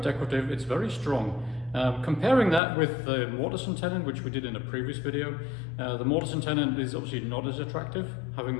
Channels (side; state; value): right; drops out; at 2.6 s